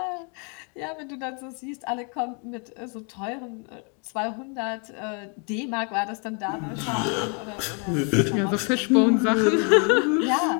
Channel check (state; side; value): quieter; right; 37.2 dB